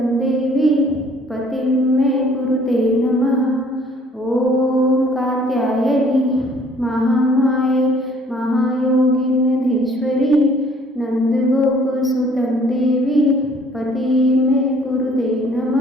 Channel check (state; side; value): normal; both; correlation 0.58